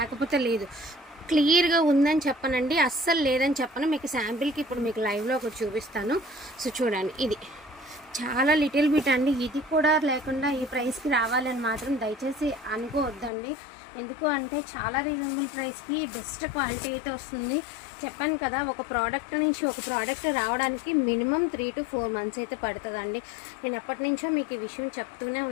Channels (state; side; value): drops out; right; at 13.3 s